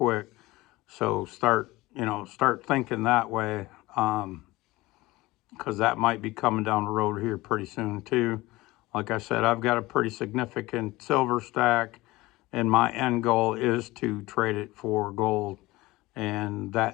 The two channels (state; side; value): quieter; right; 19.8 dB